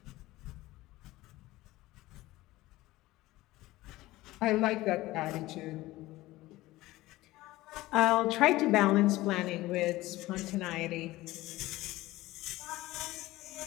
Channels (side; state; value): right; quieter; 18.0 dB